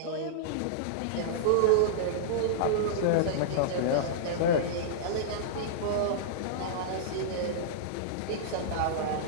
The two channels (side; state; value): both; different; correlation -0.02